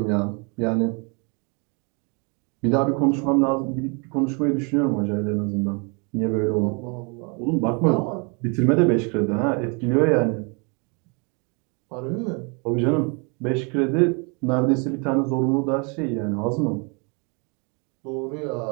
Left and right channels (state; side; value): quieter; left; 33.9 dB